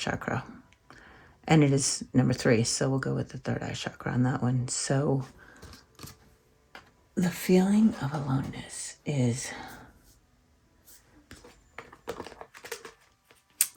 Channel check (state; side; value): identical; both; correlation 1.00